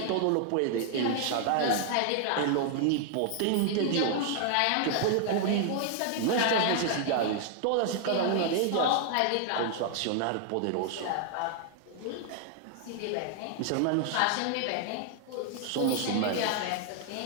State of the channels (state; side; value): different; both; correlation 0.00